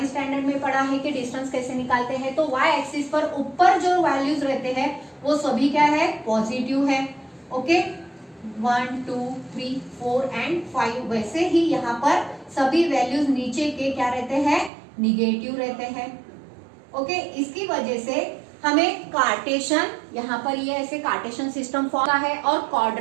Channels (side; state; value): left; drops out; at 14.7 s